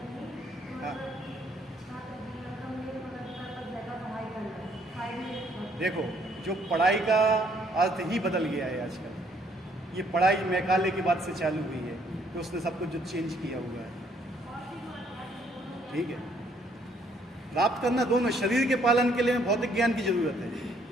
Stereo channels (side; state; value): both; normal; correlation 0.66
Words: हाँ, देखो, जो पढ़ाई का अर्थ ही बदल गया है आजकल। ये पढ़ाई मैकाले के बाद से चालू हुई है, तो उसने सब कुछ जो चेंज किया हुआ है। ठीक है, प्राप्त करना दोनों, शरीर के पालन के लिए भौतिक ज्ञान की जरूरत है,